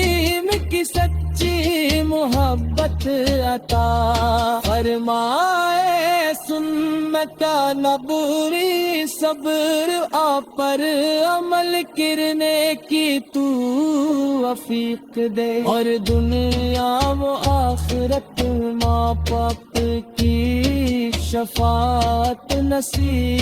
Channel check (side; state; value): both; identical; correlation 1.00